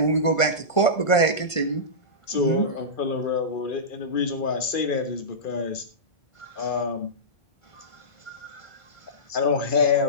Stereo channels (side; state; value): right; late; 1.5 ms